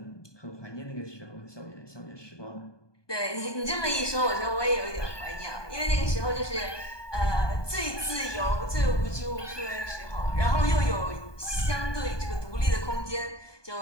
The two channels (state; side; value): late; right; 1.2 ms